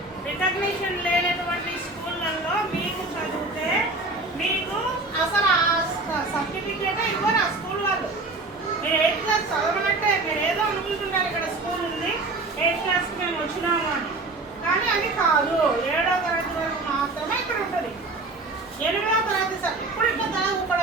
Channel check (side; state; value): left; quieter; 3.2 dB